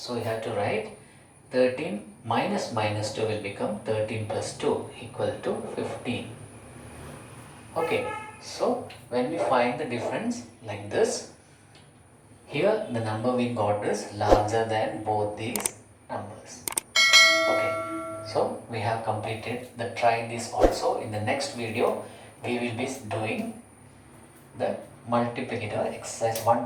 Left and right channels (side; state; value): both; identical; correlation 1.00